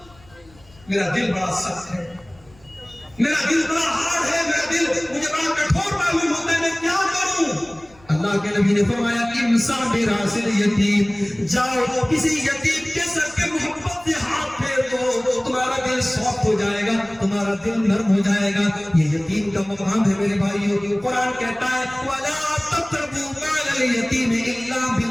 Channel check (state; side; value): noise; left; rumble, 27 dB below the sound